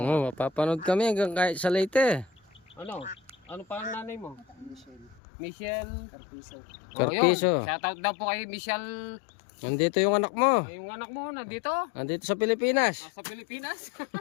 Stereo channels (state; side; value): drops out; right; at 5.2 s